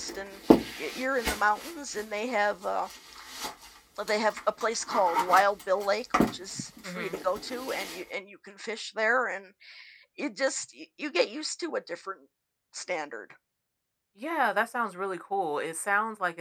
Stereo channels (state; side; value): identical; both; correlation 1.00